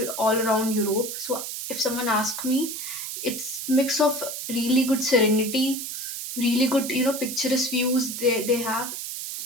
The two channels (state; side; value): noise; right; hiss, 6 dB below the sound